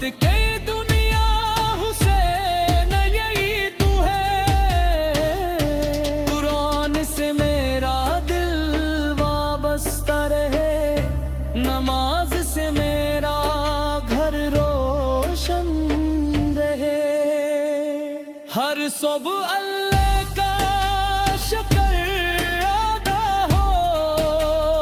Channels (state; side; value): identical; both; correlation 1.00